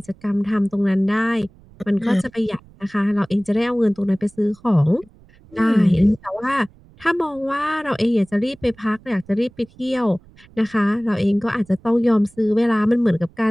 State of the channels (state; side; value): noise; right; rumble, 26 dB below the sound